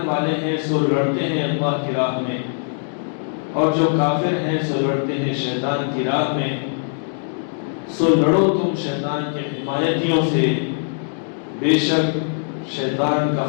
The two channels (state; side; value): silent; right; digital silence